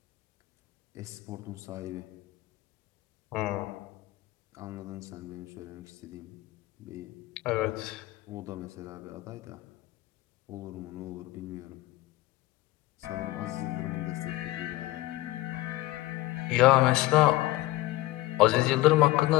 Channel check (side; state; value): right; quieter; 18.2 dB